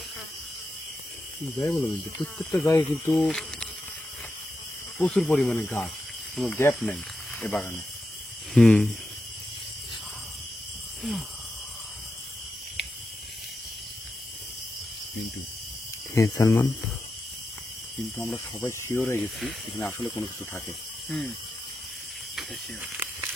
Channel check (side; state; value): both; normal; correlation 0.88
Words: যাই বলো মিন্টু, প্রত্যেকটা জায়গায় কিন্তু প্রচুর পরিমাণে গাছ, কোনো গ্যাপ নেই এ বাগানে। মিন্টু হ্যাঁ সালমান, কিন্তু আমরা সবাই শিওর হয়ে গেছি এখানে আসলে কোনো কিছু থাকে।